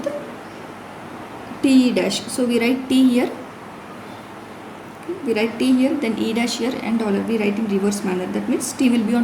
TE dash. So we write T here. Okay, we write T here, then E dash here and dollar. We write in reverse manner. That means T will be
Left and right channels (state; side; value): identical; both; correlation 1.00